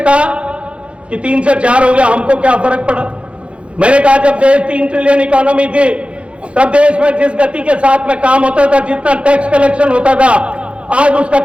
कि 3 से 4 हो गया, हमको क्या फर्क पड़ा। मैंने कहा जब देश 3 ट्रिलियन इकोनॉमी थी तब देश में जिस गति के साथ में काम होता था, जितना टैक्स कलेक्शन होता था, आज उसका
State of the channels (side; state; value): left; late; 0.060 ms